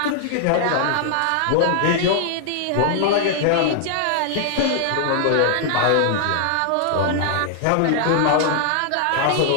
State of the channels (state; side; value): different; both; correlation -0.01